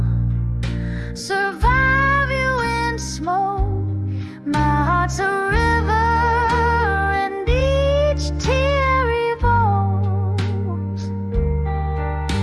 survive you in smoke. My heart's a river, and each tear evokes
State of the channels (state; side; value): identical; both; correlation 1.00